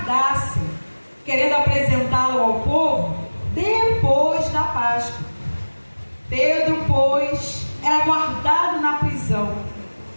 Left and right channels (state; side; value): inverted; both; correlation -1.00